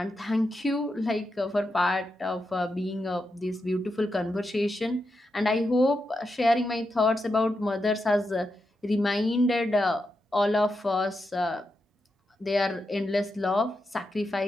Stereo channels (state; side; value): normal; both; correlation 0.86